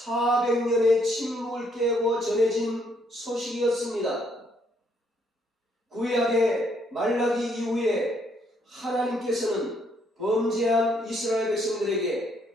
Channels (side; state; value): both; normal; correlation 0.70